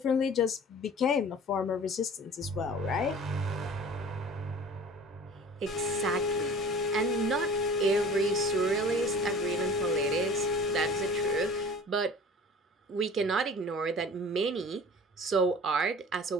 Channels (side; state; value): both; normal; correlation 0.43